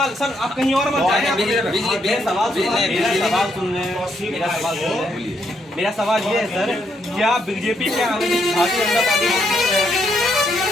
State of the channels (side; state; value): both; normal; correlation 0.75